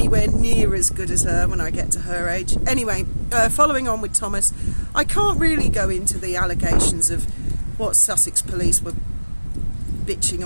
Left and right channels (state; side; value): inverted; both; correlation -1.00